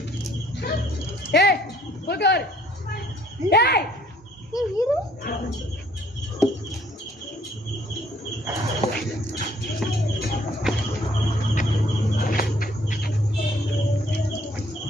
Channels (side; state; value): both; normal; correlation 0.61